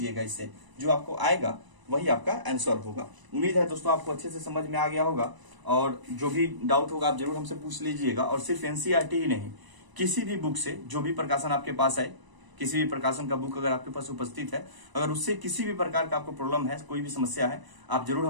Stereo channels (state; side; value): late; left; 1.0 ms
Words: इससे जो आपको आएगा वही आपका आंसर होगा। उम्मीद है दोस्तों आपको अच्छे से समझ में आ गया होगा, और जो भी डाउट होगा आप जरूर हमसे पूछ लीजिएगा। और सिर्फ एनसीईआरटी ही नहीं, किसी भी बुक से जो भी प्रकाशन आपके पास है, किसी भी प्रकाशन का बुक अगर आपके पास उपस्थित है, अगर उससे किसी भी प्रकार का आपको प्रॉब्लम है, कोई भी समस्या है, आप जरूर